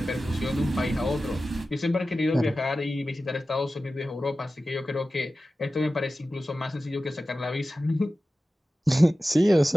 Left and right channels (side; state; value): both; normal; correlation 0.94